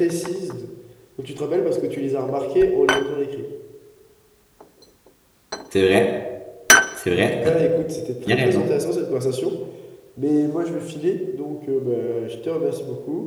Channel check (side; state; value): both; identical; correlation 1.00